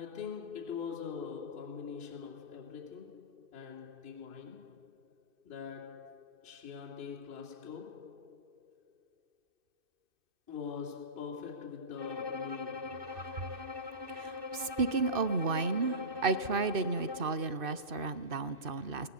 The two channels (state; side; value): late; left; 2.6 ms